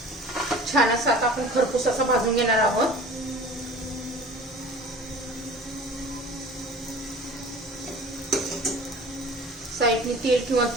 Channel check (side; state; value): both; normal; correlation 0.43